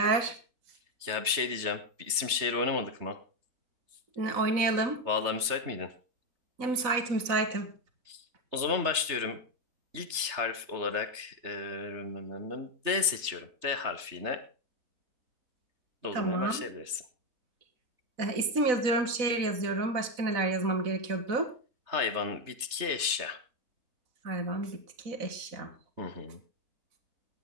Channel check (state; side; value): late; left; 3.3 ms